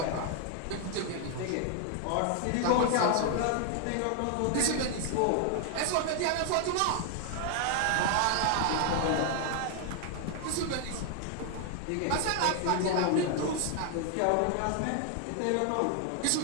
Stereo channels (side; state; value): both; different; correlation 0.00